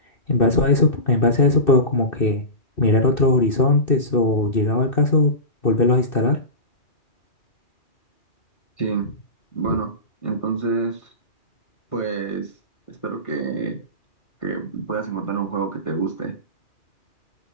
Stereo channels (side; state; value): right; late; 2.6 ms